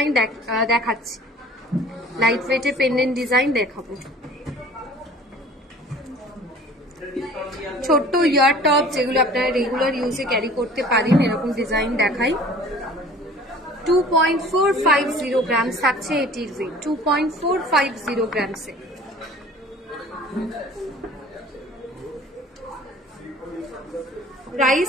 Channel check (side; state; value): both; normal; correlation 0.48